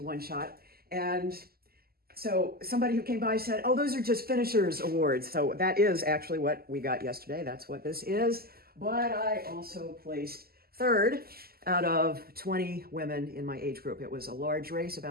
one shot. And so somebody who came by said, oh, those are just finishers awards. So that is actually what we got yesterday. That's what this is. But I also placed third out of 20 women in my age group. It was a large race,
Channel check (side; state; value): left; late; 0.45 ms